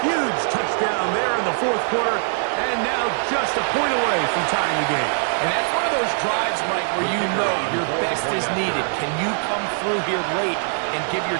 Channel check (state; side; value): silent; left; 58 dB below the other